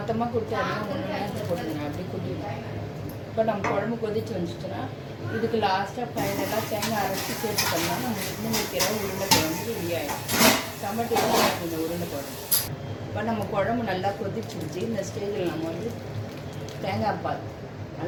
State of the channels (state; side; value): identical; both; correlation 1.00